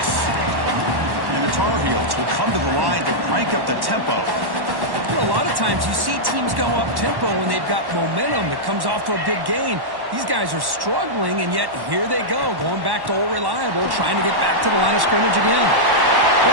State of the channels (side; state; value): left; late; 1.1 ms